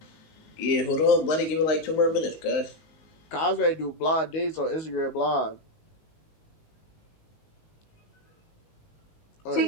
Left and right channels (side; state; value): right; late; 19 ms